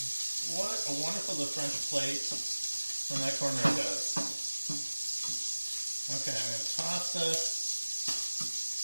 what a wonderful the French plate from that corner does. Okay, I'm going to toss this.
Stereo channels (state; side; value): inverted; both; correlation -1.00